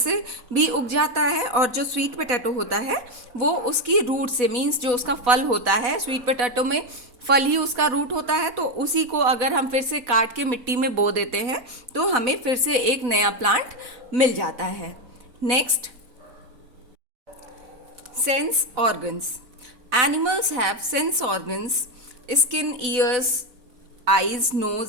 भी उग जाता है, और जो स्वीट पोटैटो होता है वो उसकी रूट से, मीन्स जो उसका फल होता है, स्वीट पोटैटो में फल ही उसका रूट होता है, तो उसी को अगर हम फिर से काट के मिट्टी में बो देते हैं तो हमें फिर से एक नया प्लांट मिल जाता है. Next, sense organs. Animals have sense organs, skin, ears, eyes,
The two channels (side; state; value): left; late; 4.0 ms